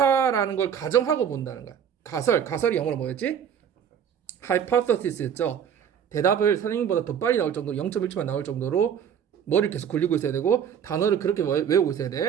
걸 가정하고 본다는 거야. 가설이 영어로 뭐였지? hypothesis였죠. 대답을 선생님보다 더 빨리 나올 정도로 0.1초만 나올 정도로 머리를 계속 굴리고 있어야 되고 단어를 그렇게 외우고 있어야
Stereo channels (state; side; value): quieter; left; 8.3 dB